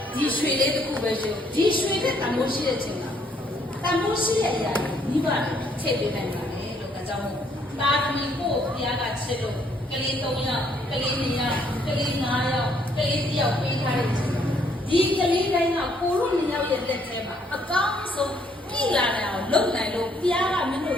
ဒီရွှေလေးတစ်ခုပဲရှင်ဒီရွှေတဲ့တမိုးရှိတဲ့ချိန်မှာတမိုးရှိတဲ့အရာကြီးမိဘတွေထည့်ပေးနိုင်ပါလေလို့ဒါကြောင့်မို့တာသမီကိုဘုရားကချစ်လို့ကလေး3ယောက်ကလေး2ယောက်ကလေး5ယောက်ကလေး1ယောက်ပေးထားတဲ့ချိန်ဒီကလေးတိုင်းကကိုတို့2ယောက်ရဲ့လက်ထဲမှာအကောင်းဆုံးပြည်လာတယ်အောင်လုပ်နိုင်လို့ဘုရားကမင်းတို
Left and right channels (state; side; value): normal; both; correlation 0.68